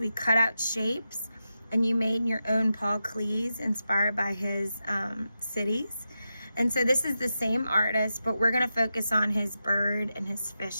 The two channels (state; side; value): inverted; both; correlation -0.90